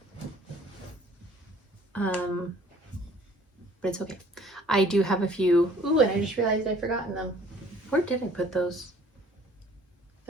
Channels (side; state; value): both; normal; correlation 0.55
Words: but it's okay. I do have a few. Ooh, and I just realized I've forgotten them. Where did I put those?